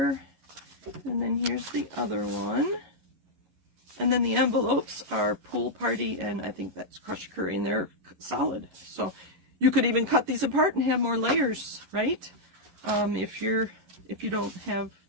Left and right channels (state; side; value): late; left; 11 ms